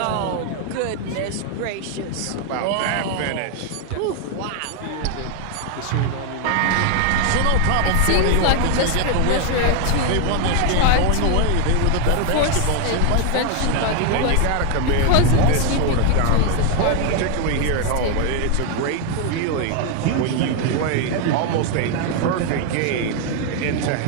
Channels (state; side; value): different; both; correlation 0.01